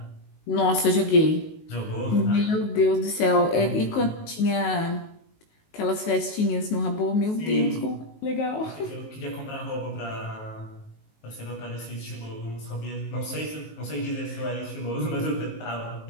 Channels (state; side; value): late; right; 19 ms